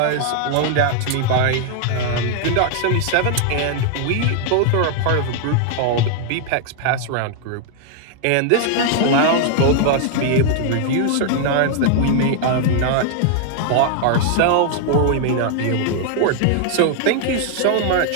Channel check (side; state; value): both; different; correlation 0.00